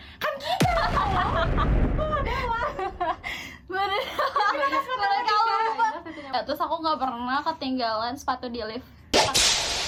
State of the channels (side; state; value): both; identical; correlation 1.00